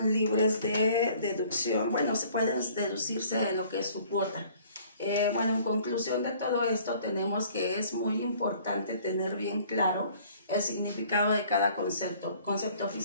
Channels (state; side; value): inverted; both; correlation -0.55